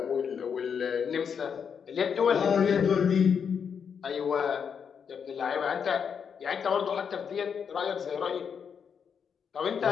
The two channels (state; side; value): quieter; right; 6.9 dB